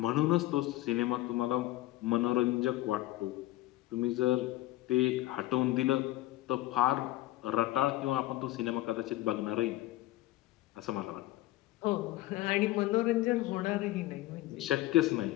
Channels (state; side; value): quieter; right; 16.8 dB